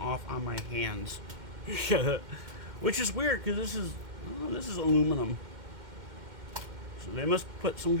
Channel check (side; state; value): left; late; 2.1 ms